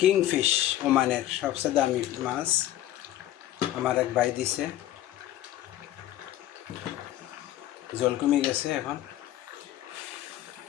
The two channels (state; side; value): quieter; right; 13.6 dB